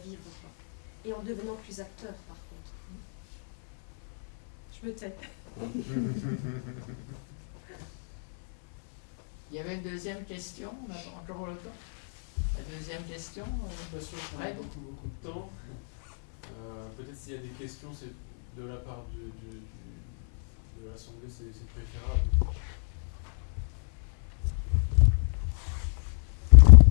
quoi. Et en devenant plus acteur, par contre. Je me tais. Il y avait une deuxième question, on a encore le temps. La deuxième question, Fred. Beaucoup de temps. Peut-être s'il y a des questions, c'est de la part de l'Assemblée, c'est préférable.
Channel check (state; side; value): silent; right; 60 dB below the other